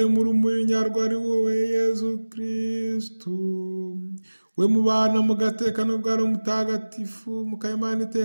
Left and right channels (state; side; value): inverted; both; correlation -1.00